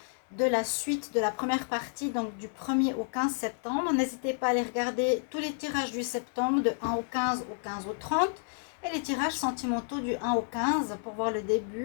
de la suite de la première partie, donc du 1er au 15 septembre. N'hésitez pas à aller regarder tous les tirages du septembre, de 1 au 15, au 15 au 30, et les tirages sentimentaux du 1 au 15 pour voir le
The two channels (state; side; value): silent; right; digital silence